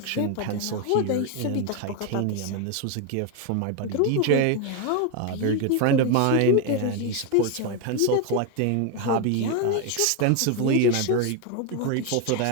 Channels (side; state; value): both; different; correlation 0.01